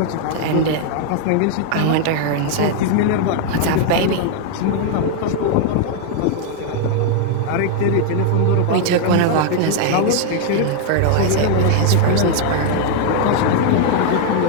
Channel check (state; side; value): different; both; correlation 0.00